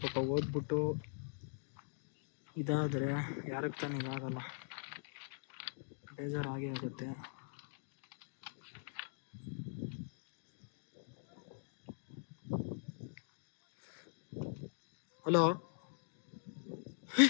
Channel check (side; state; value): right; silent; digital silence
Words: ಪಾಪ ಓದ್ಬಿಟ್ಟು ಇದಾದರೆ ಯಾರಿಗೆ ತಾನೇ ಇದಾಗಲ್ಲ, ಬೇಜಾರಾಗೇ ಆಗುತ್ತೆ. ಹಲೋ,